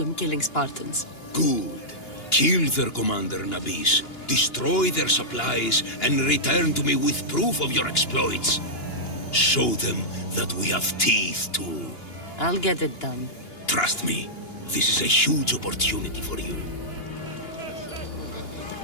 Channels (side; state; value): right; late; 2.9 ms